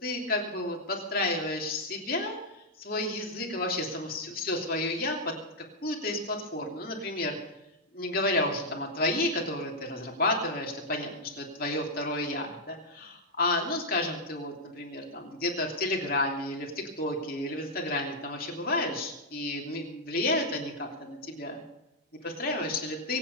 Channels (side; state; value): both; normal; correlation -0.03